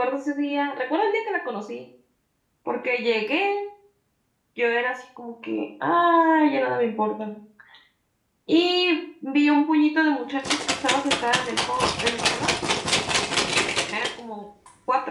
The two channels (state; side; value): identical; both; correlation 1.00